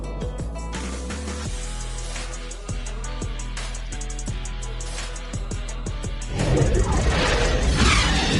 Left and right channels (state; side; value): identical; both; correlation 1.00